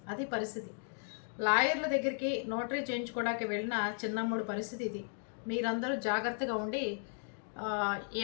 అది పరిస్థితి. లాయర్ల దగ్గరికి నోటరీ చేయించుకోవడానికి వెళ్ళిన చిన్నమ్ముడు పరిస్థితి ఇది. మీరందరూ జాగ్రత్తగా ఉండి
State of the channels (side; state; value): right; silent; 54 dB below the other